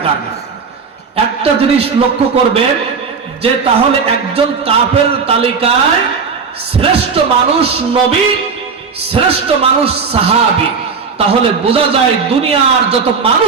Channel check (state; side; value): quieter; left; 5.4 dB